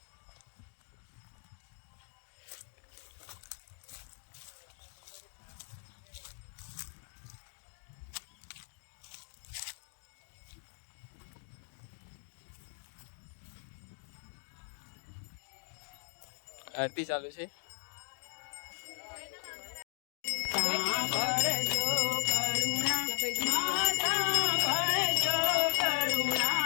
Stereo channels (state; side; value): silent; right; digital silence